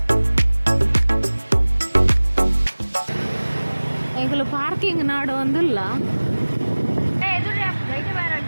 ಪಾರ್ಕಿಂಗ್ ನಾಡು ಒಂದಿಲ್ಲ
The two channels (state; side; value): inverted; both; correlation -1.00